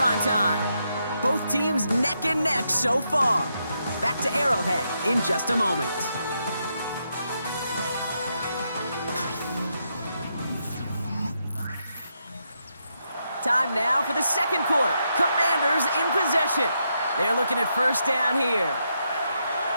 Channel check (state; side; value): inverted; both; correlation -0.81